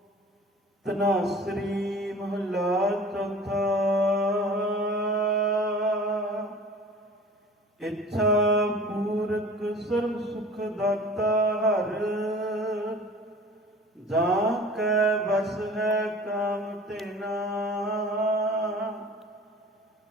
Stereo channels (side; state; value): both; normal; correlation 0.43